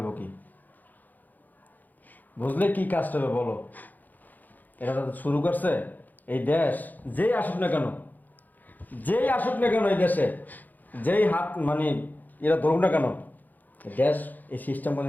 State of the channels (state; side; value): late; right; 0.084 ms